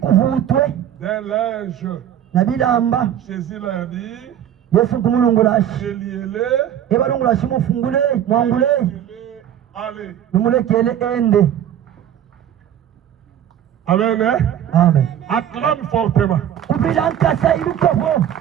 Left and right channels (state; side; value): quieter; left; 10.3 dB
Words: d'un linge. na bilamba. Jésus leur dit, Yesu kumulungulashi reliez-les, ebalungulashi mufungule mwangule allez. numulekele ende. Amen. Hein? Amen. Acclame fortement. Kubila nkasa ibikofo.